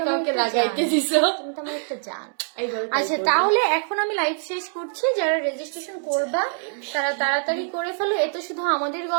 কাউকে লাগাইতে দিছো। তুমি তো আমার একটা জান। এইবার আচ্ছা, তাহলে এখন আমি লাইভ শেষ করছি। যারা রেজিস্ট্রেশন করবা তারা তাড়াতাড়ি করে ফেলো। এ তো শুধু আমাদের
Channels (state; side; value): silent; left; 63 dB below the other